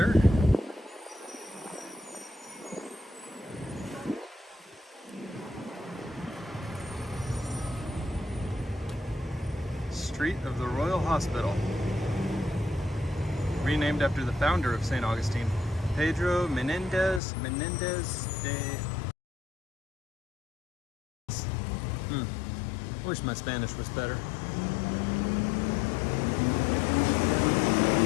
Street of the Royal Hospital. Renamed after the founder of St. Augustine, Pedro Menendez de... Wish my Spanish was better.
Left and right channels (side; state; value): right; drops out; at 17.2 s